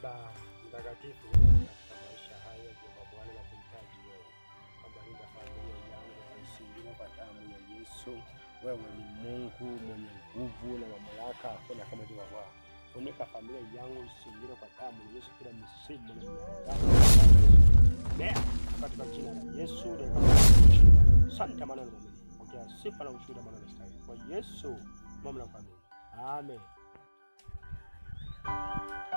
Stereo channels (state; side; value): inverted; both; correlation -1.00